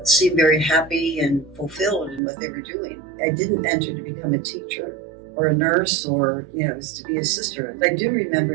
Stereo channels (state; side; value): drops out; left; at 2.2 s